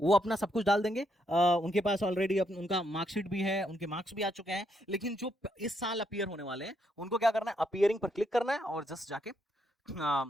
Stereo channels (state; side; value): normal; both; correlation 0.77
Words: अपना सब कुछ डाल देंगे। उनके पास ऑलरेडी उनका मार्कशीट भी है, उनके मार्क्स भी आ चुके हैं। लेकिन जो इस साल अपीयर होने वाले हैं उनको क्या करना है, अपीयरिंग पर क्लिक करना है और जस्ट जाके